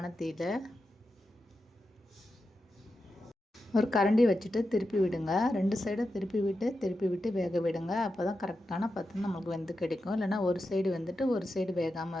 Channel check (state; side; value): normal; both; correlation 0.89